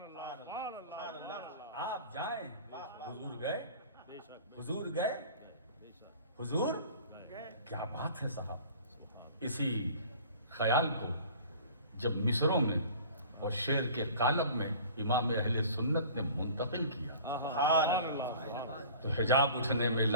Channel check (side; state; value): both; inverted; correlation -0.44